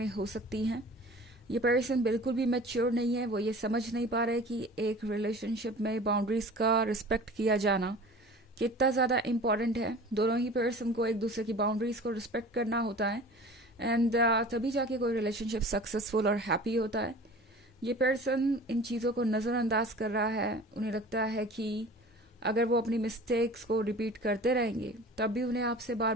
हो सकती हैं। ये पर्सन बिल्कुल भी मैच्योर नहीं है। वो ये समझ नहीं पा रहे कि एक रिलेशनशिप में बाउंड्रीज का रिस्पेक्ट किया जाना कितना ज़्यादा इम्पॉर्टेंट है। दोनों ही पर्सन को एक दूसरे की बाउंड्रीज को रिस्पेक्ट करना होता है, एंड तभी जाके कोई रिलेशनशिप सक्सेसफुल और हैप्पी होता है। ये पर्सन इन चीज़ों को नज़रअंदाज कर रहा है। उन्हें लगता है कि अगर वो अपनी मिस्टेक्स को रिपीट करते रहेंगे तब भी उन्हें आपसे बार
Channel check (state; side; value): normal; both; correlation 0.42